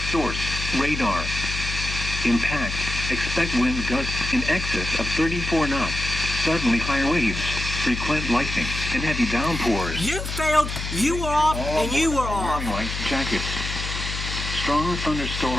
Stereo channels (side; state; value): left; noise; hum, 5 dB below the sound